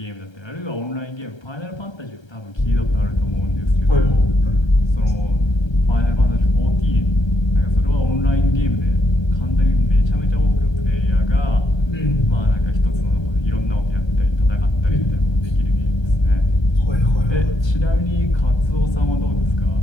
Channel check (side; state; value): right; late; 1.3 ms